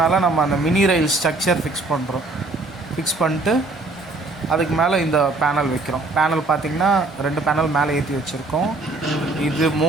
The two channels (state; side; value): quieter; left; 3.2 dB